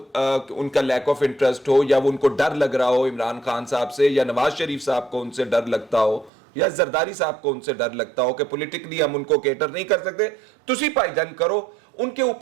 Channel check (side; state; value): left; drops out; at 6.3 s